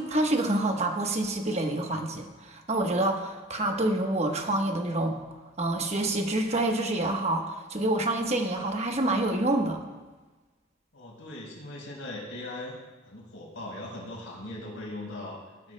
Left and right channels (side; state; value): both; normal; correlation 0.43